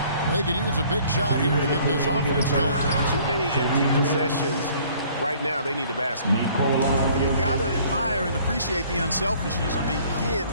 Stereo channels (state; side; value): inverted; both; correlation -0.56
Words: They could use a big shot here to get this offense going. Too many empty possessions. Right now, they need a basket. Well, you got to admire and appreciate the unselfishness. I mean, kid